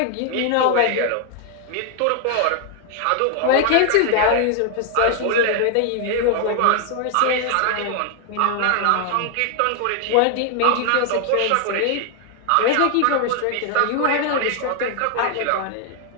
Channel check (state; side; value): different; both; correlation 0.00